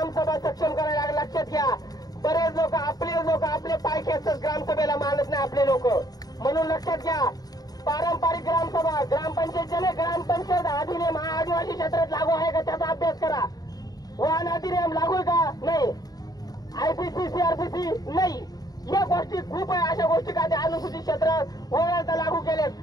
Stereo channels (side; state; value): right; late; 0.18 ms